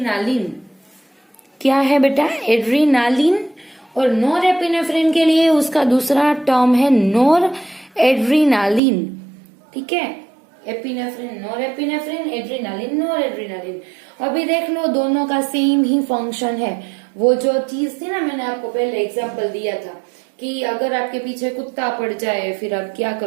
क्या है बेटा, एड्रीनालिन, और नोरेपिनेफ्रिन के लिए उसका दूसरा टर्म है नोर एड्रीनालिन, ठीक है। एपिनेफ्रिन, नोरेपिनेफ्रिन, एड्रीनालिन, नोर एड्रीनालिन। अभी देख लो दोनों का सेम ही फंक्शन है। वो जो चीज थी ना, मैंने आपको पहले एग्जांपल दिया था कि अगर आपके पीछे कुत्ता पड़ जाए फिर आप क्या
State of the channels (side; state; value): left; drops out; at 8.8 s